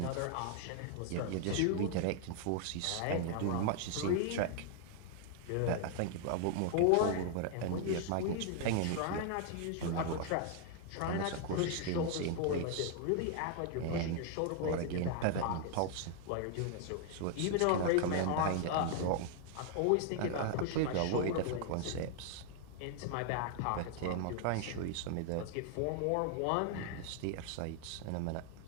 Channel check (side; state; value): both; different; correlation 0.00